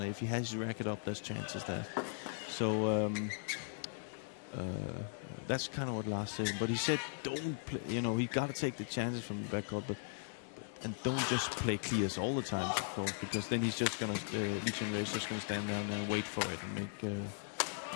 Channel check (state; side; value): silent; right; 52 dB below the other